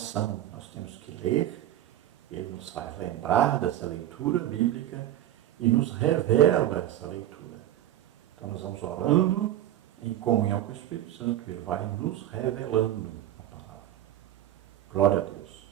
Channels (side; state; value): left; quieter; 12.6 dB